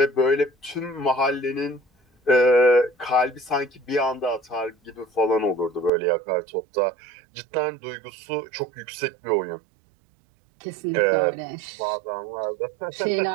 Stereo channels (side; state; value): left; drops out; at 5.9 s